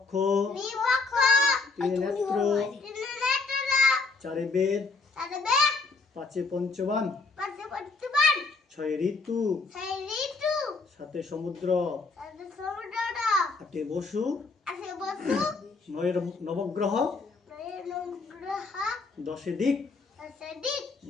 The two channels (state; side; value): quieter; right; 4.0 dB